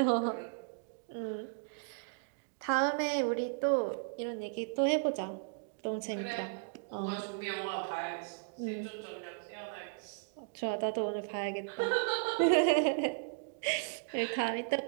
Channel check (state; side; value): quieter; left; 38.2 dB